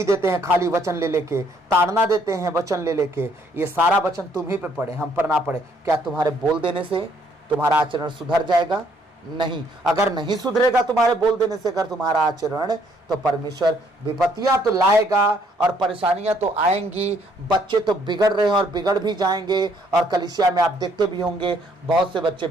देते हैं खाली वचन ले लेके, ताड़ना देते हैं वचन ले लेके। ये सारा वचन तुम ही पे पड़े, हम पर ना पड़े। क्या तुम्हारे बोल देने से तुम्हारा आचरण सुधर जाएगा? नहीं। अगर नहीं सुधरेगा तुम्हारे बोल देने से अगर तुम्हारा आचरण, तो परमेश्वर विपत्तियां तो लाएगा और परेशानियां तो आएंगी। बच्चे तो बिगड़ रहे हैं और बिगड़ भी जाएंगे, और कलीसिया में आप देखते भी होंगे बहुत से बच्चे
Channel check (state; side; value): normal; both; correlation 0.67